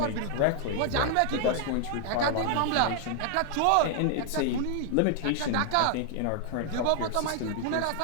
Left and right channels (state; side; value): different; both; correlation 0.00